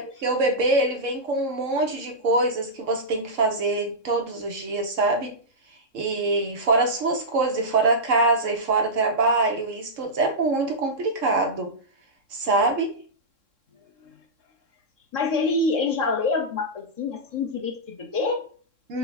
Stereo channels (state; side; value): late; left; 3.7 ms